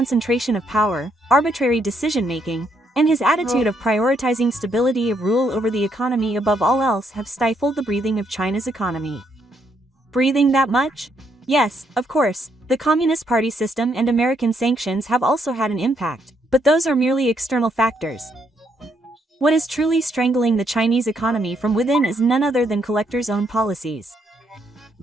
of power, arbitrary decision-making, and his attitude of prioritizing stability of rule over the economy above all else have stifled the breathing of China's economy. Breathing that much? Yes, of course, the Communist Party system and American sanctions have also had an impact, but those are merely external factors. What is truly strangling the Chinese economy from within is none other than Collector's own policies.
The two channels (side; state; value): both; normal; correlation 0.74